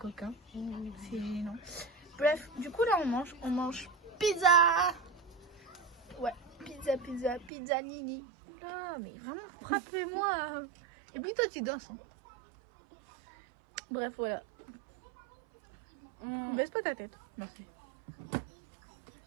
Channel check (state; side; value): drops out; left; at 7.5 s